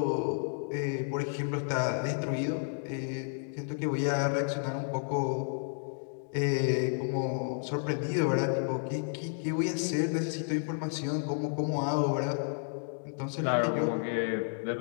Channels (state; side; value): silent; right; digital silence